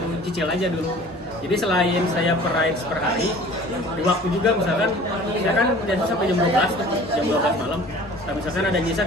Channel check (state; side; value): normal; both; correlation 0.46